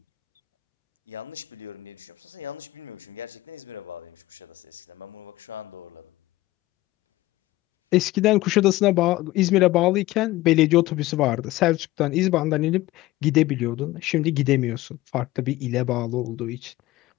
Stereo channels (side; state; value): right; quieter; 17.6 dB